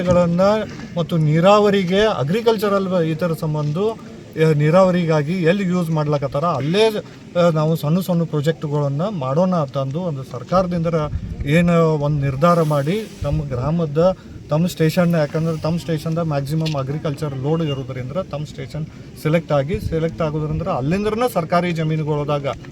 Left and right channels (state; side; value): identical; both; correlation 1.00